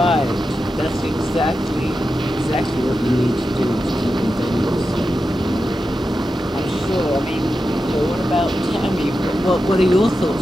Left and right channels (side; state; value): both; normal; correlation 0.90